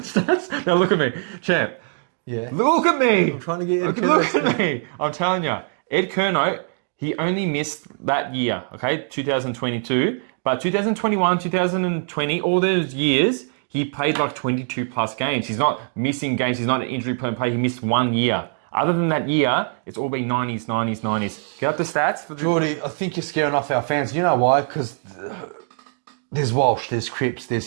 the stats. Now look at me, champ. Yeah. Look at me. I'm trying to get Ed Curnow. Look at me. I'm telling you, Ed Curnow. He only missed that year. Okay, 2022. But 2021, 2020, all those years, he played like 22 plus games. He's not missing games. He's not an injury-prone player. He missed 1 year. Other than that year, it's all been 90s. Get up the stats. For Jordy, I think you're scaring off our fans. You know why? Because there's Walsh, there's Cripps,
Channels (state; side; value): silent; left; 64 dB below the other